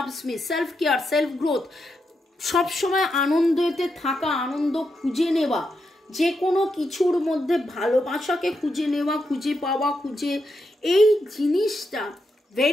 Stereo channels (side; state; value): both; normal; correlation 0.84